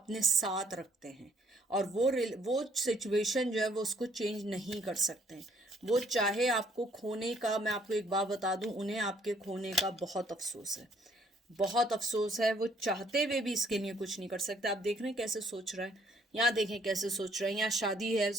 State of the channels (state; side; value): normal; both; correlation 0.64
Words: साथ रखते हैं, और वो सिचुएशन जो है वो उसको चेंज नहीं कर सकते हैं। वो चाहे आपको खोने का, मैं आपको एक बात बता दूं, उन्हें आपके खोने का बहुत अफसोस है, बहुत अफसोस है। वो चाहते हुए भी इसके लिए कुछ नहीं कर सकते। आप देख रहे हैं कैसे सोच रहा है, यहाँ देखें कैसे सोच रहा है, यहाँ शादी है